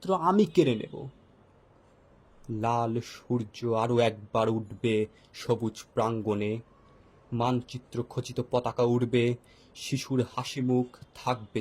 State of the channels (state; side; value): identical; both; correlation 1.00